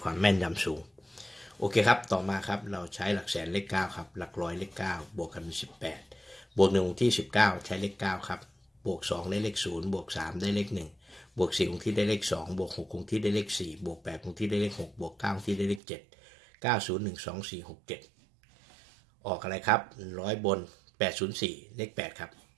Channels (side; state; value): left; drops out; at 15.8 s